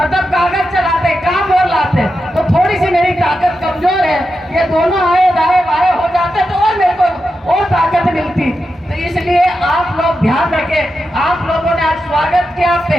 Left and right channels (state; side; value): normal; both; correlation 0.89